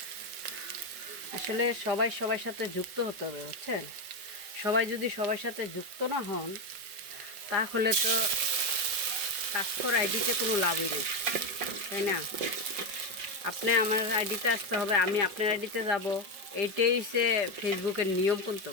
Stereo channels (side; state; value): left; late; 5.2 ms